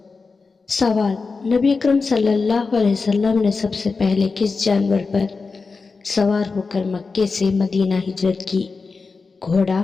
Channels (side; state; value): right; quieter; 4.4 dB